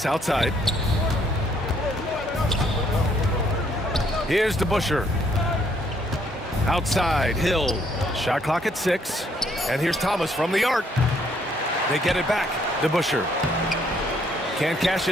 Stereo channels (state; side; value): normal; both; correlation 0.68